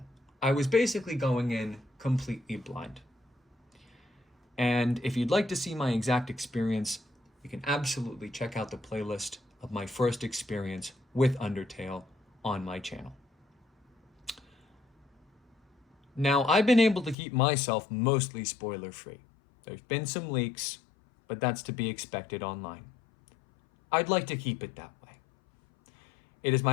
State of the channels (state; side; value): drops out; right; at 17.2 s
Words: I was basically going in completely blind. And if you'd like to see my exact experience, you can absolutely check out the playlist of my first experience with Undertale on my channel. Now, I've been able to keep myself mostly spoiler-free. There's been some leaks, but that's to be expected online. I'd like to keep it that way. It is